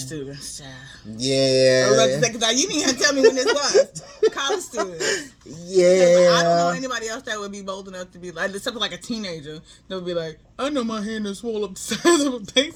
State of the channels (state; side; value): identical; both; correlation 1.00